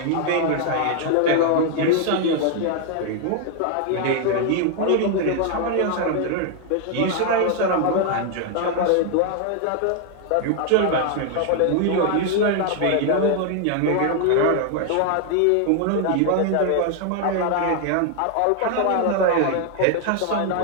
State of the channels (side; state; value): both; different; correlation 0.00